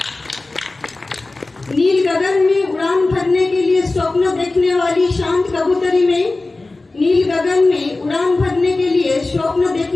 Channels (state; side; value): quieter; right; 3.2 dB